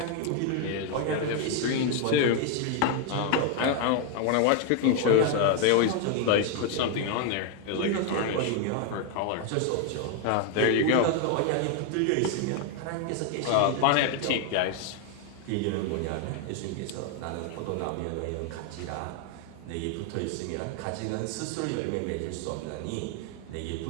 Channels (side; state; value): both; different; correlation 0.01